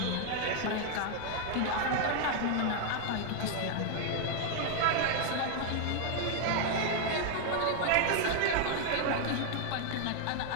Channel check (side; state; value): both; different; correlation 0.00